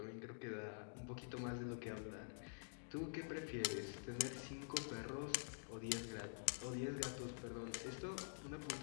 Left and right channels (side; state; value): right; silent; digital silence